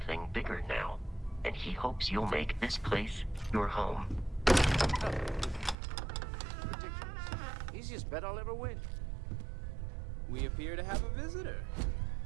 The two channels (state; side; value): drops out; left; at 5.8 s